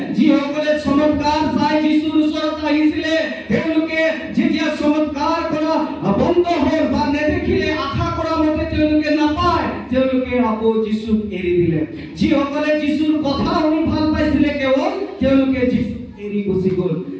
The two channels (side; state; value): both; identical; correlation 1.00